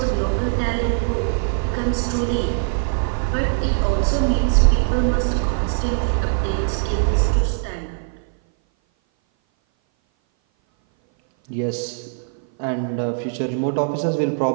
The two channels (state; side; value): silent; left; 58 dB below the other